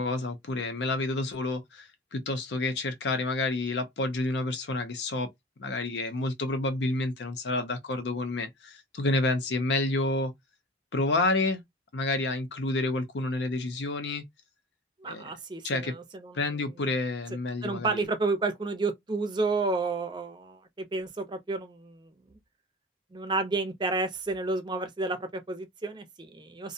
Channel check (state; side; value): normal; both; correlation 0.37